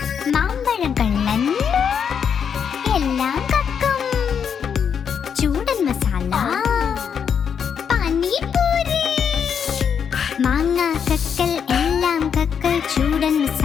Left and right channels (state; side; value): quieter; right; 7.3 dB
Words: മാമ്പഴം കള്ളൻ എല്ലാം കക്കും ചൂടൻ മസാല പാനിപൂരി മാങ്ങ കക്കൽ എല്ലാം കക്കൽ ചൂടൻ